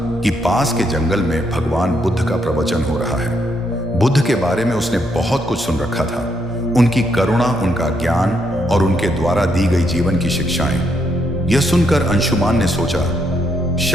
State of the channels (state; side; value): normal; both; correlation 0.76